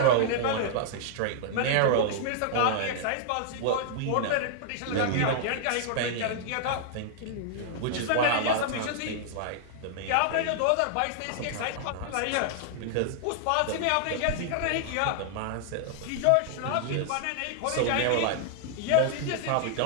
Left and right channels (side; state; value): both; different; correlation -0.01